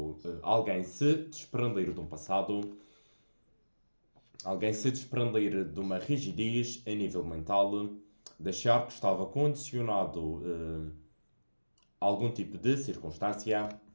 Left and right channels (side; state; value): both; inverted; correlation -1.00